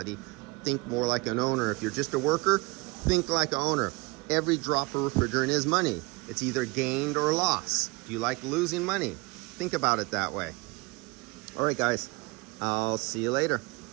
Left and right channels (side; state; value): left; quieter; 25.7 dB